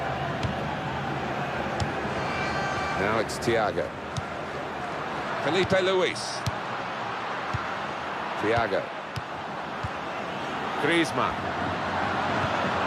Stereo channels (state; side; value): identical; both; correlation 1.00